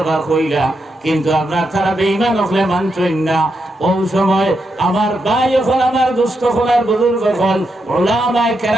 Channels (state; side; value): normal; both; correlation 0.83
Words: কইলা, কিন্তু আপনার তারা বেঈমান হলে মানছেন না। ওই সময় আমার ভাই হল আমার দুস্থ হলার বুজুর্গ হল উলামায়ে